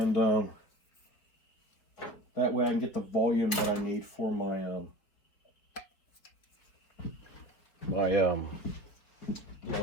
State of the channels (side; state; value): right; late; 4.8 ms